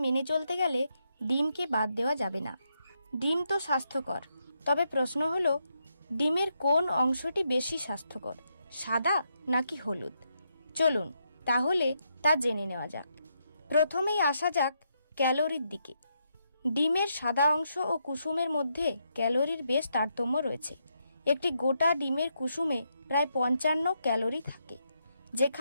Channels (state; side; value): inverted; both; correlation -0.80